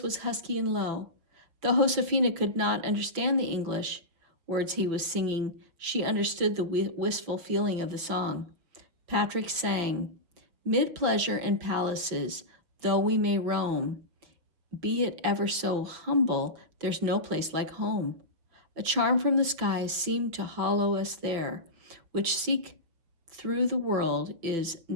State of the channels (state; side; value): late; left; 6.0 ms